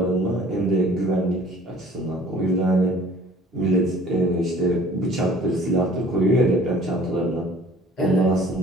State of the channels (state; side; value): normal; both; correlation 0.51